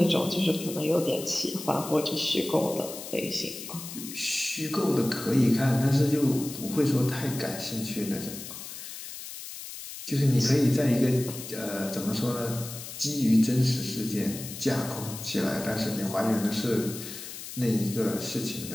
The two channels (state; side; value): noise; left; hiss, 11 dB below the sound